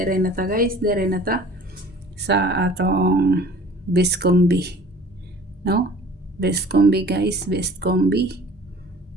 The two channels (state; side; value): normal; both; correlation 0.47